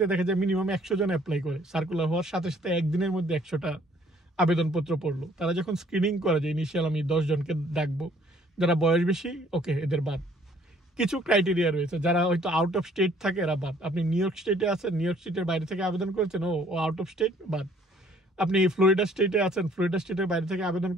দেখা যায় মিনিমাম 100 জন অ্যাপ্লাই করে, সার্কুলার হওয়ার সাথে সাথে একদিনের মধ্যে 100টা আবেদনপত্র পড়লো। তারা যখন স্ক্রিনিং করে যে ইনিশিয়াল আমি 10 জনকে ডাকবো, যারা বয়স বেশি, ওকে, এদের বাদ। কিছু ক্রাইটেরিয়া রয়েছে, যারা হয়তো আউট অফ স্টেট থাকে এরা বাদ। আপনি নিউ ইয়র্ক স্টেটে আছেন, নিউ ইয়র্ক স্টেটের বাইরে থেকে আবেদন করেছেন, ও আউট অফ স্টেট, বাদ। আপনি ফ্লোরিডা স্টেটে আছেন, ফ্লোরিডা স্টেটের বাইরে থেকে আবেদন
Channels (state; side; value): normal; both; correlation 0.60